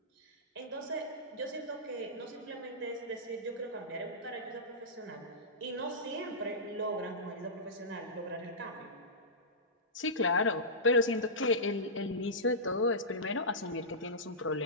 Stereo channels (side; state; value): both; normal; correlation -0.16